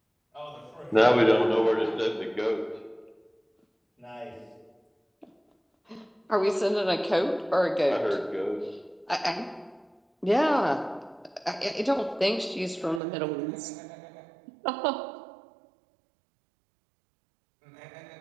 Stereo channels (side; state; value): left; drops out; at 13.0 s